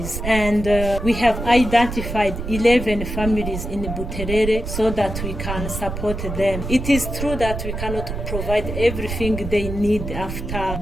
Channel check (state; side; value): noise; right; rumble, 6 dB below the sound